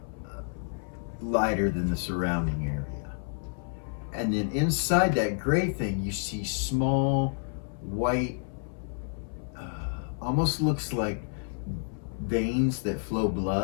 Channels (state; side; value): silent; right; 58 dB below the other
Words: lighter than the surrounding area. And then inside that gray thing, you see small white, almost looks like veins that flow